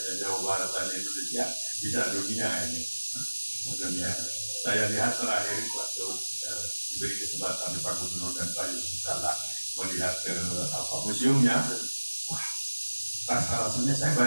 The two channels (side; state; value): both; inverted; correlation -1.00